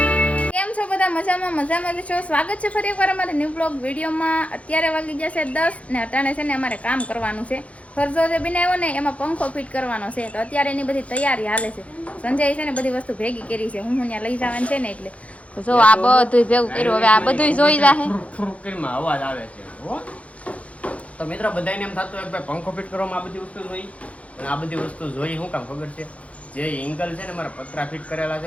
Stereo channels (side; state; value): right; late; 0.064 ms